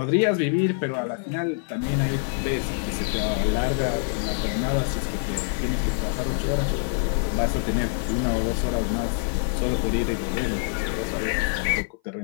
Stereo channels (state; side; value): silent; right; 58 dB below the other